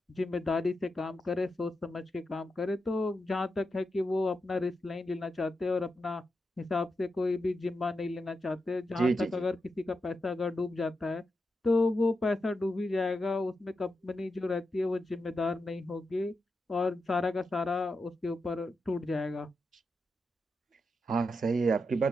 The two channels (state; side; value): normal; both; correlation 0.87